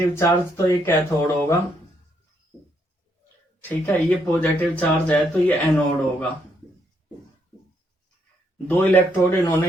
चार्ज, तो ये कैथोड होगा। ठीक है, ये पॉजिटिव चार्ज है तो ये एनोड होगा। दो इलेक्ट्रोड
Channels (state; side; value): normal; both; correlation 0.74